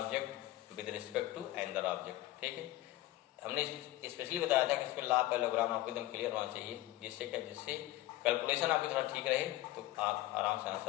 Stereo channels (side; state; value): right; quieter; 16.4 dB